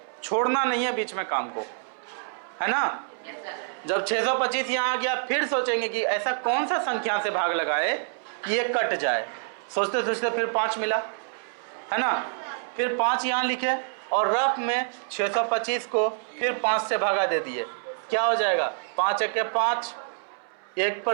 छोड़ना नहीं है बीच में काम को, है ना। जब 625 यहाँ आ गया, फिर सोचेंगे कि ऐसा कौन सा संख्या से भाग लगाए कि ये कट जाए। सोचते सोचते फिर 5 मिला, है ना। फिर 5 यहाँ लिखे और रफ में 625 को फिर 5 से भागा दे दिए, क्या हो जाएगा 5 1 के 5, 1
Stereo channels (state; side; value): silent; left; 60 dB below the other